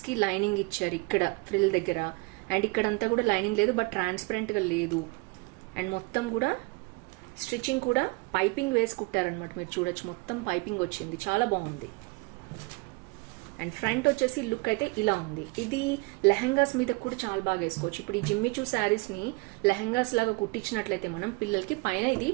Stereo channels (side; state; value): left; quieter; 27.2 dB